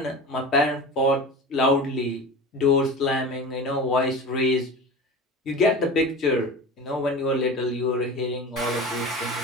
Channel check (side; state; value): both; normal; correlation 0.32